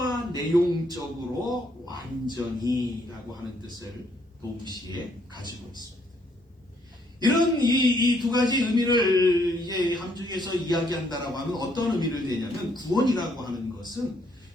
내용적으로 완전히라고 하는 뜻을 동시에 가지고 있습니다. 이런 이 두 가지 의미를 이제 함축해서 이야기한다라고 하면 어떤 의미를 내냐면 구원이라고 하는 것은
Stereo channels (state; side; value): normal; both; correlation 0.69